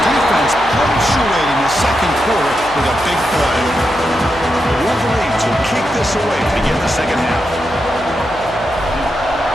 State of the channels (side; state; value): left; noise; hum, 18 dB below the sound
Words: defense punctuating the second quarter with a big play. The Wolverines will kick this away to begin the second half.